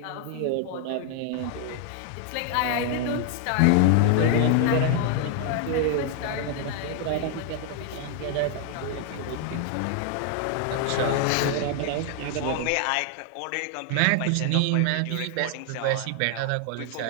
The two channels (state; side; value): different; both; correlation 0.00